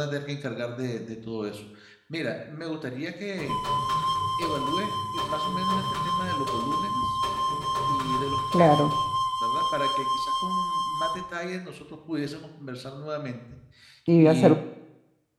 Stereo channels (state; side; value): identical; both; correlation 1.00